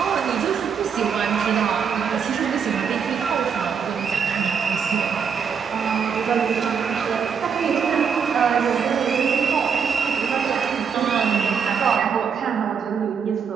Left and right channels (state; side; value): quieter; left; 6.7 dB